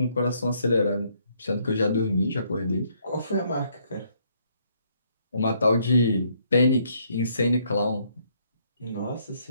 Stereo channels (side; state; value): both; inverted; correlation -0.70